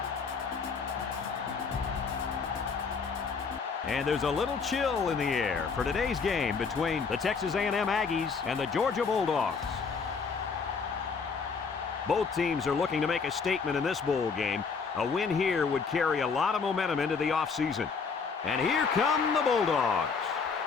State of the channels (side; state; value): right; quieter; 5.3 dB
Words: And there's a little chill in the air for today's game between the Texas A&M Aggies and the Georgia Bulldogs. Both teams are looking to make a statement in this bowl game. A win here would carry a lot of momentum into the offseason. And here come the Bulldogs.